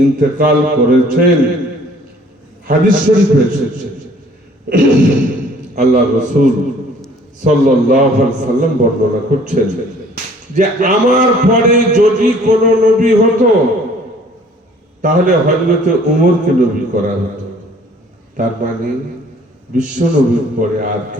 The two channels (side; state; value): both; normal; correlation 0.55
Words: ইন্তেকাল করেছেন। হাদিস শরীফে এসেছে, আল্লাহ রাসূল সাল্লাল্লাহু আলাইহি সাল্লাম বর্ণনা করছেন যে আমার পরে যদি কোন নবী হতো, তাহলে হযরতে ওমরকে নবী করা হতো। তার মানে বিশ্ব নবীর পরে আর